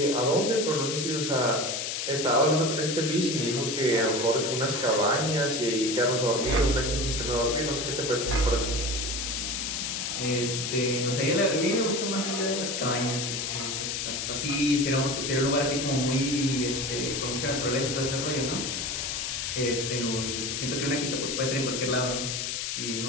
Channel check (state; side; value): noise; left; hiss, 2 dB below the sound